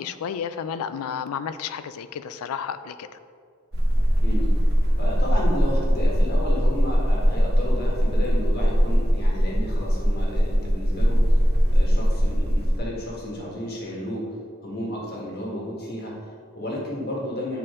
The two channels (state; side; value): normal; both; correlation 0.91